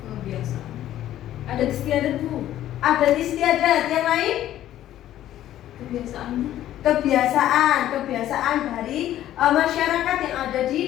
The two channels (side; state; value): right; quieter; 12.7 dB